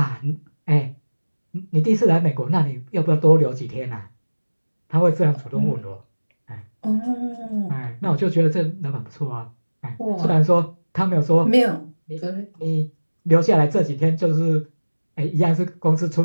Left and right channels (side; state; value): both; inverted; correlation -1.00